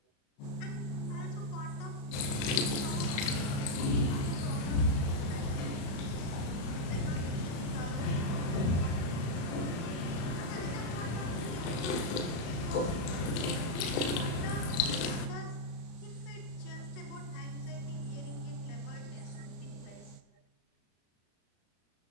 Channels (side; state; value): right; late; 35 ms